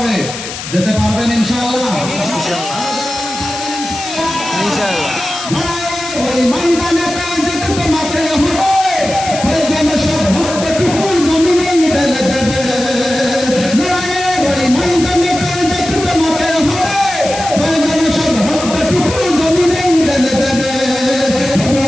যেতে পারবেন ইনশাআল্লাহ? ওই ময়দানেতে যেতে তোমাকে হবে, প্রয়োজনে সব রক্তটুকু জমিনে ঢেলে দেবে। ওই ময়দানেতে যেতে তোমাকে হবে, প্রয়োজনে সব রক্তটুকু জমিনে ঢেলে দেবে।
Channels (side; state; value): left; noise; hiss, 9 dB below the sound